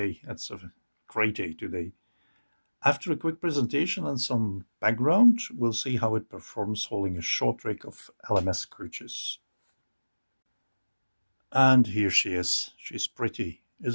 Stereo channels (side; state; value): both; inverted; correlation -1.00